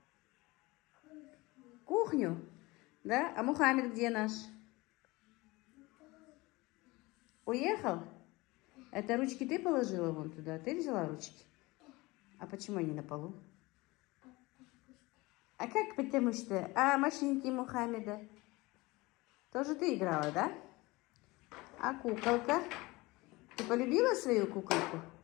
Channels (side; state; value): right; quieter; 22.2 dB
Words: Кухню. Да? А Мухаммед где наш? Уехал? Это ручки ты положила вон туда? Ты взяла ручки? А почему они на полу? А как потому что? А машинки Мухаммеда? Тоже ты играла, да? А куколка? Ты полюбила свою куколку?